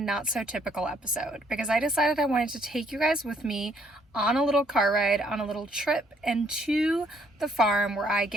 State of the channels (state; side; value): normal; both; correlation 0.67